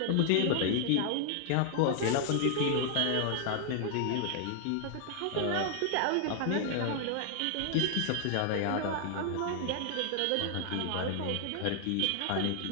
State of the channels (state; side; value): different; both; correlation 0.00